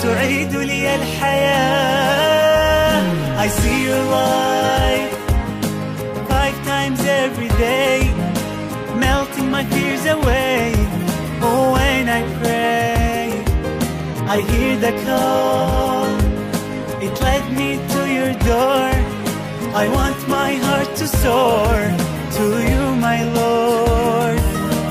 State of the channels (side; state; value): both; identical; correlation 1.00